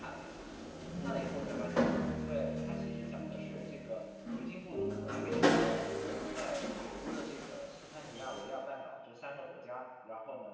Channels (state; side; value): identical; both; correlation 1.00